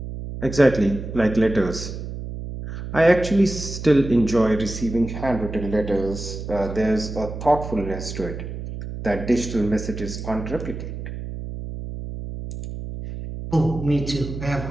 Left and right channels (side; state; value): right; noise; hum, 8 dB below the sound